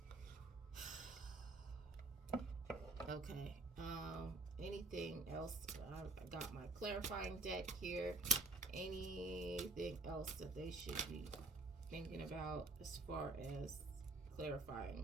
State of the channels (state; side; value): quieter; left; 3.3 dB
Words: Okay. Anything else? I got my clarifying deck here. Anything else that they should be thinking about as far as clarifying